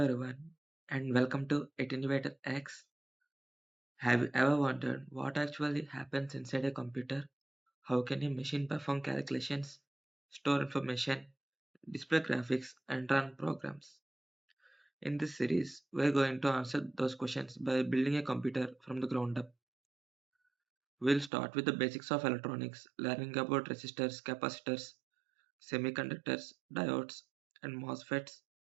everyone and welcome to AttenuatorX. Have you ever wondered what actually happens inside a computer? How can a machine perform calculations, store information, display graphics and run programs? In this series, we're going to answer those questions by building a computer from the ground up. We'll start with the basics of electronics, learning about resistors, capacitors, semiconductors, diodes and MOSFETs.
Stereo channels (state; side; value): drops out; left; at 21.3 s